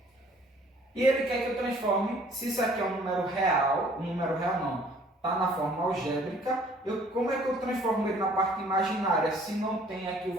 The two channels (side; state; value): both; normal; correlation 0.56